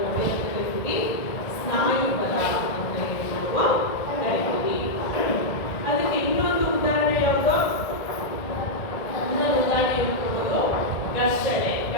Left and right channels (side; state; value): right; late; 1.7 ms